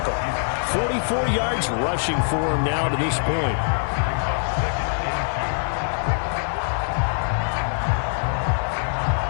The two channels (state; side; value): silent; right; 63 dB below the other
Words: 44 yards rushing for him now to this point.